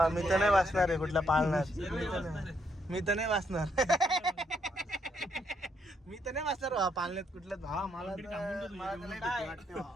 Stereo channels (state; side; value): normal; both; correlation 0.74